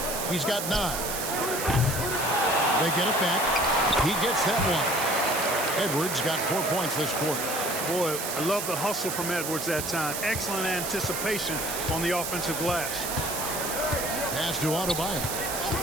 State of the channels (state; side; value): noise; right; hiss, 4 dB below the sound